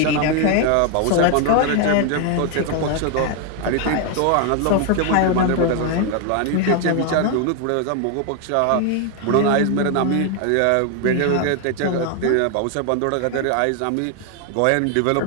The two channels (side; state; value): both; different; correlation 0.00